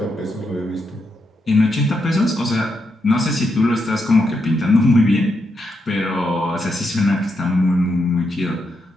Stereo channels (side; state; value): both; normal; correlation 0.82